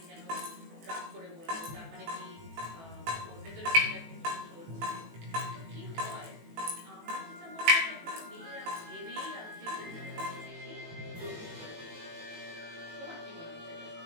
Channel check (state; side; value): late; left; 18 ms